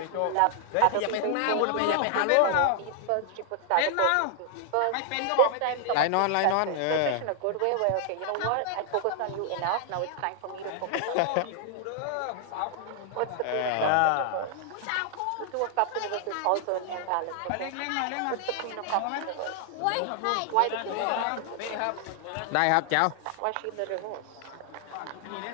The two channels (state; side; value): different; both; correlation 0.00